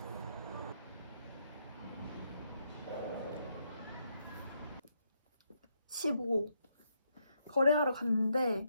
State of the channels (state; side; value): inverted; both; correlation -0.78